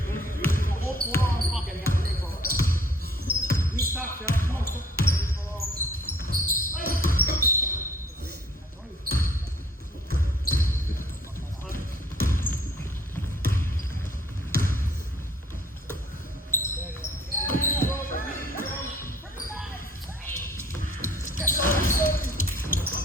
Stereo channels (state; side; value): normal; both; correlation 0.56